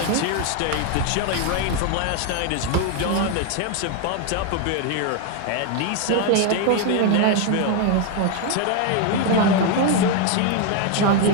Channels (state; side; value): different; both; correlation 0.01